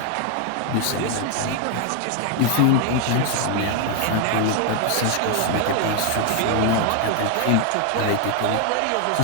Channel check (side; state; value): both; different; correlation 0.00